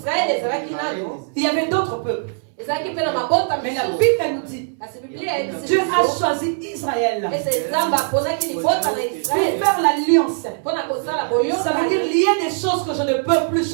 il y avait d'autres peuples. Mais la Bible nous dit, Dieu a choisi Israël pour faire l'alliance. Ça veut dire lier des choses que je ne peux plus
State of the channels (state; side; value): silent; left; 65 dB below the other